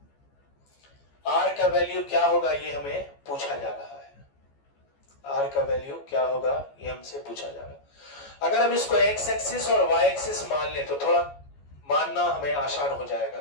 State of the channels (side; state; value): right; late; 14 ms